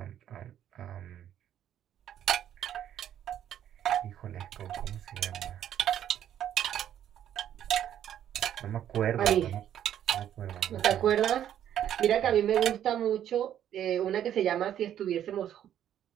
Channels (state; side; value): quieter; left; 10.5 dB